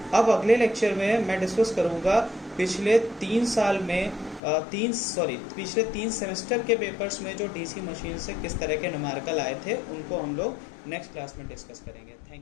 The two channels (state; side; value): drops out; right; at 4.4 s